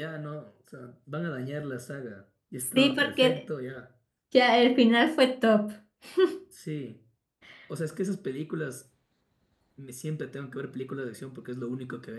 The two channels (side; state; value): both; identical; correlation 1.00